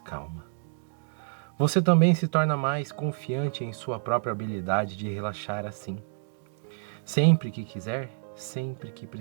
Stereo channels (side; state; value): left; silent; digital silence